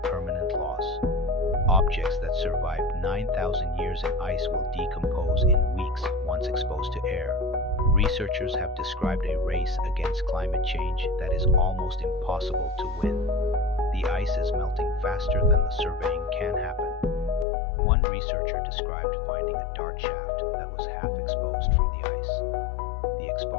loss. Objects that survived 9,000 years in ice will decompose in weeks once exposed to air. Researchers have described a race against climate change that is almost impossible to win. The ice is melting faster than the surveying can happen. One researcher described finding a dart shaft that was half exposed from the ice. The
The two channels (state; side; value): drops out; right; at 17.4 s